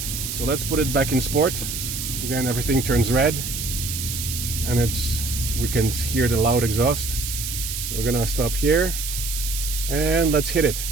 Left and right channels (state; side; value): noise; right; hiss, 5 dB below the sound